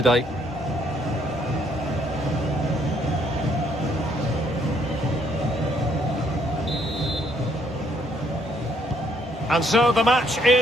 And so the match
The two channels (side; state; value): both; normal; correlation 0.69